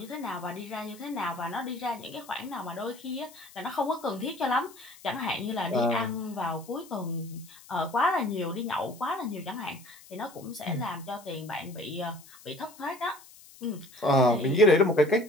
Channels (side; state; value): left; noise; hiss, 21 dB below the sound